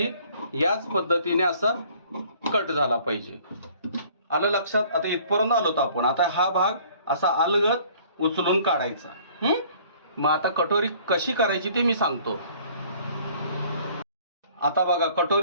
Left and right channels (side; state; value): both; inverted; correlation -0.55